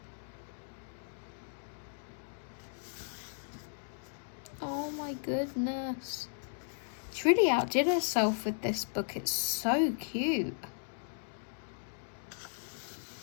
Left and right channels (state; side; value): silent; right; digital silence